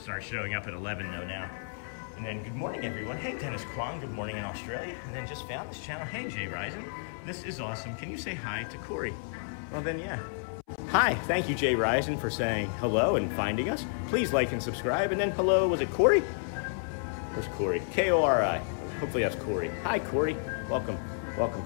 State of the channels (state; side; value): silent; right; 57 dB below the other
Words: start showing up at 11 though now. And then good morning, everyone. Hey, Dennis Kwong, good morning in Australia. And then just found this channel. Hey, Jay Risen. This is awesome. Can you say hi to Corey? Well then, yeah. Hi, thank you, Jay Risen, for saying hello and finding us. Please like and subscribe. And then hello, was it Corey? Where's Corey? K-O-R-I. Hopefully that's Corey. Hi, Corey. Welcome. Welcome,